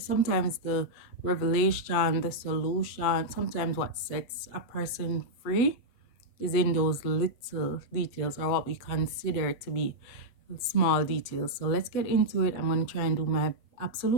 the revelation, the solution, sometimes what sets a person free is in those little details or what we consider to be small details. So let's get into it. I'm going to try and do my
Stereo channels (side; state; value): right; late; 8.1 ms